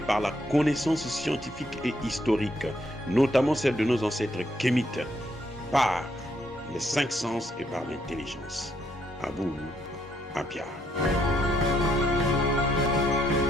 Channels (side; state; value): both; normal; correlation 0.73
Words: la connaissance scientifique et historique, notamment celle de nos ancêtres kémites, par les cinq sens et par l'intelligence. Abou Abia.